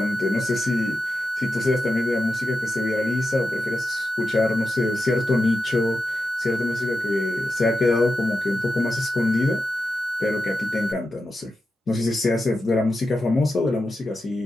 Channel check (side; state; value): both; normal; correlation 0.90